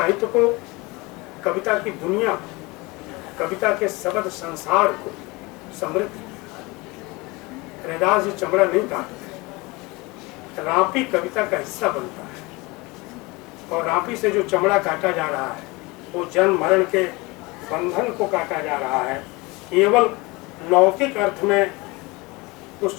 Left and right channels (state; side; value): quieter; right; 24.3 dB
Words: को, कविता की दुनिया, कविता के शब्द संसार को समृद्ध किया। रैदास जी चमड़ा नहीं काटते, रापी कविता का हिस्सा बनता है, और रापी से जो चमड़ा काटा जा रहा है वो जन्म मरण के बंधन को काटा जा रहा है। केवल लौकिक अर्थ में